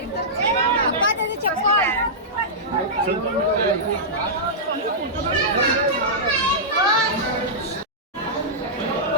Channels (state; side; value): normal; both; correlation -0.13